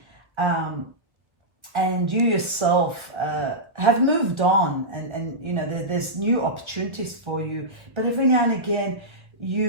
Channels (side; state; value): left; late; 1.3 ms